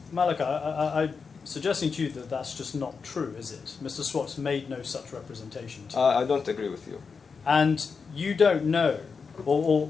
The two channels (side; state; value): right; quieter; 5.3 dB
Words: Malika, I'm suggesting to you that that's just not true, is it? Mr. Swartz made no such representation to you. I don't agree with you. And you don't know, or